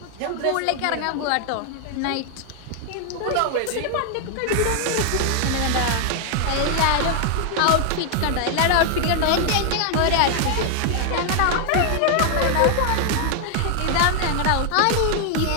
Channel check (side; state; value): both; different; correlation 0.00